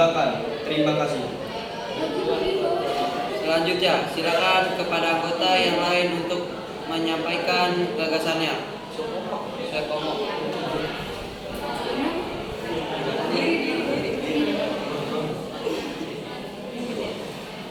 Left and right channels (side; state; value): both; identical; correlation 1.00